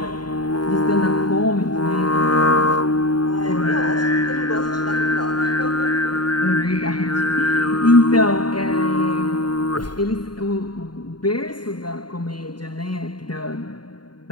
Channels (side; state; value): right; late; 0.71 ms